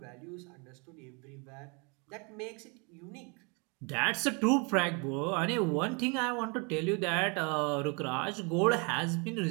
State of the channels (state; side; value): quieter; left; 32.6 dB